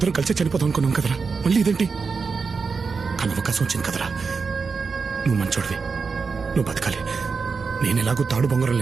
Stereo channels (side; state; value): left; quieter; 5.0 dB